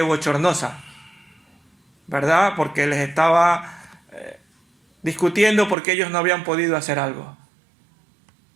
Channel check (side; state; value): left; drops out; at 5.8 s